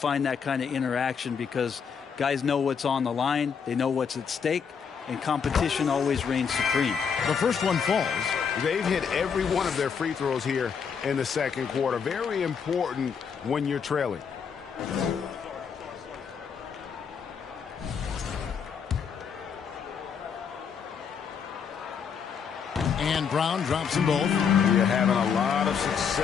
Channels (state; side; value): quieter; right; 6.6 dB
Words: that kind of interaction because guys know what's on the line, they know what's at stake, and competition always reigns supreme. The first one falls. They've hit every one of their free throws here in the second quarter. Very important when you're trailing. And Brown drops them both. You're having a lot of